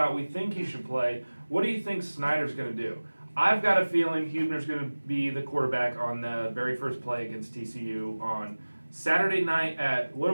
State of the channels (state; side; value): inverted; both; correlation -1.00